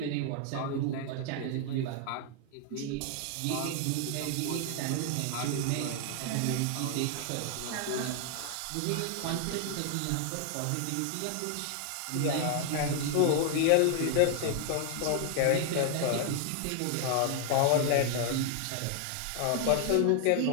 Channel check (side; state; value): both; different; correlation 0.00